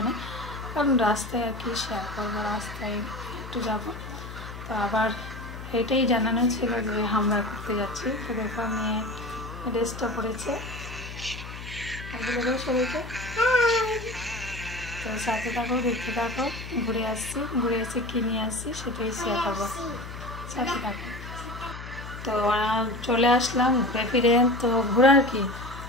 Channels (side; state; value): left; noise; hum, 11 dB below the sound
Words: না, কারণ রাস্তায় আর কি শেয়ার করবো, রাস্তায় একটু যাব। তো আবার এটাই জানানো ছিল যে আমরা ঘুরতে যাচ্ছি। তো দেখো মেয়ে ড্রেসটা পরেছে, সবাইকে। তো সাথে থাকো, দেখতে থাকো, ঘুরে এসে কী নিয়ে আসছি সেটাই শেয়ার করবো, সাথে থাকো। তো চলে আসলাম ঘুরে ফিরে। তো ঘোরার কি,